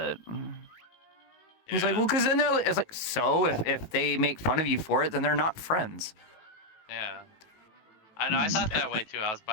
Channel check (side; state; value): right; late; 19 ms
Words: He's like, well, because then it's like, so if they make fun of you for it, then they're not friends. Yeah. I know, I thought that way too. I was